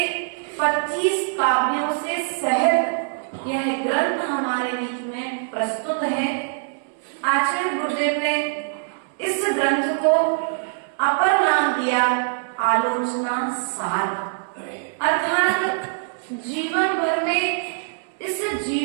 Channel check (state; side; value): silent; left; 63 dB below the other